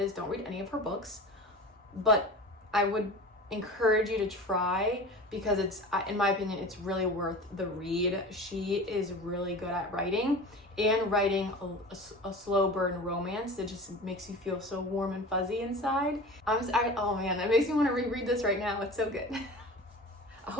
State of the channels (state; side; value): normal; both; correlation 0.35